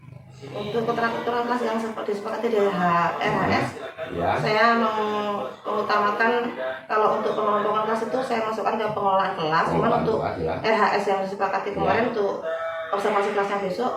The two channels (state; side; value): identical; both; correlation 1.00